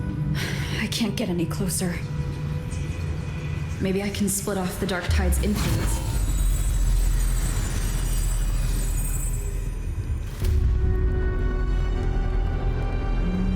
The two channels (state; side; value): identical; both; correlation 1.00